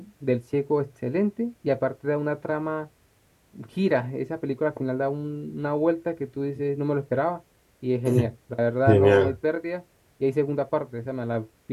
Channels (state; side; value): identical; both; correlation 1.00